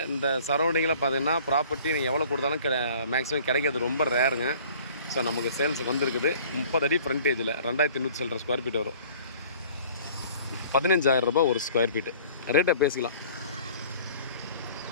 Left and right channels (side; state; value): both; inverted; correlation -0.50